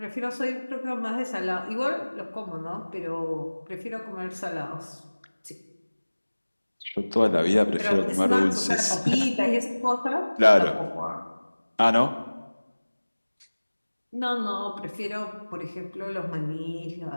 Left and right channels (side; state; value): both; inverted; correlation -1.00